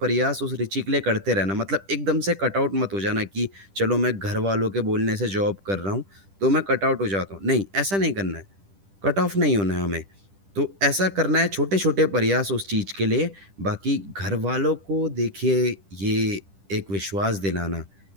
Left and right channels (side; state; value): left; late; 10 ms